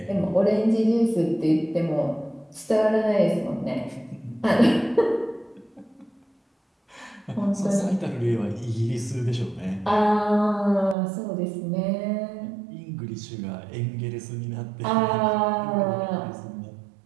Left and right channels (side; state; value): left; drops out; at 11.0 s